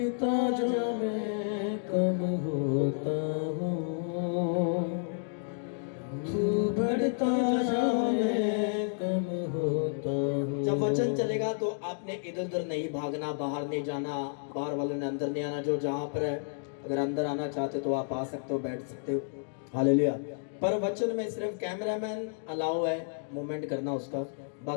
जा, मैं कम होता हूँ। तू बढ़ता जा, मैं कम होता हूँ। जब वचन चलेगा तो आपने इधर उधर नहीं भागना, बाहर नहीं जाना, बाहर वाले ने अंदर नहीं आना। जो जहाँ पर है, अगर अंदर आना चाहते तो आप आ सकते हो, बैठ सकते हो। हालेलुया। पर वचन में सिर्फ कैमरामैन अलाउ है मूवमेंट करना उसका,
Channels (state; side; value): silent; right; digital silence